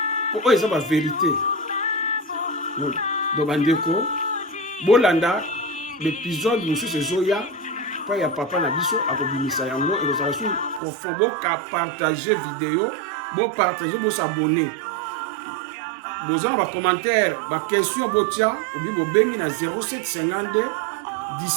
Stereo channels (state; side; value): drops out; left; at 10.8 s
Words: po oyo eza ba vérité donc bandeko bolanda l'épisode mosusu ezoya pa ya papa na biso akobimisa yango ekozala su profond ka partager vidéo bo partager bo s'abonner bozana ba commentaire ba question botia obi bobengi na 0752